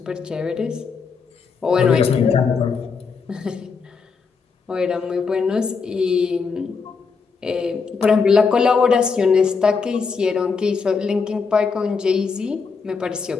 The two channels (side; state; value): right; quieter; 5.2 dB